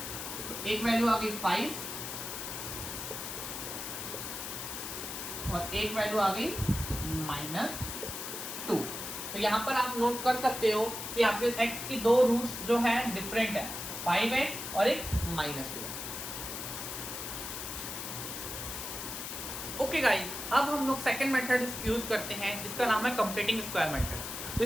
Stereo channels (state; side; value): noise; left; hiss, 6 dB below the sound